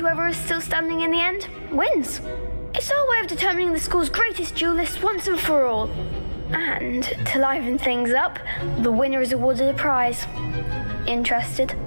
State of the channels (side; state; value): both; inverted; correlation -1.00